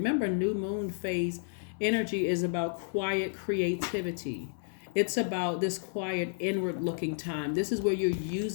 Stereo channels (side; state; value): right; silent; 57 dB below the other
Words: new moon phase energy is about quiet creativity. It's about this quiet inward looking time. This is where you're